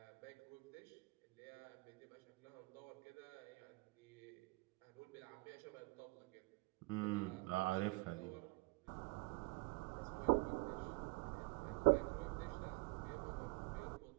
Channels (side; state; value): left; quieter; 25.3 dB